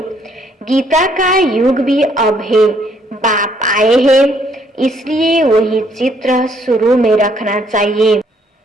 गीता का युग भी अब है। बाप आए हैं, इसलिए वही चित्र शुरू में रखना चाहिए।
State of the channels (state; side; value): normal; both; correlation 0.67